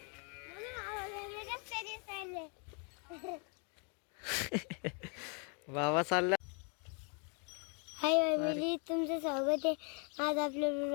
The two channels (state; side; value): quieter; right; 37.8 dB